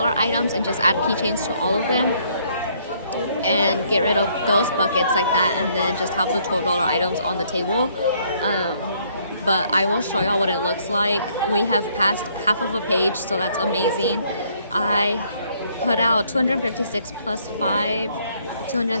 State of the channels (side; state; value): both; inverted; correlation -0.66